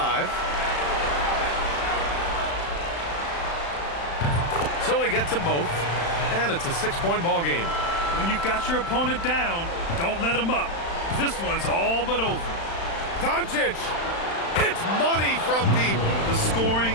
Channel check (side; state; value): right; late; 35 ms